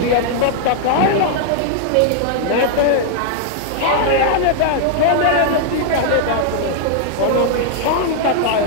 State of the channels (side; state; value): both; different; correlation -0.01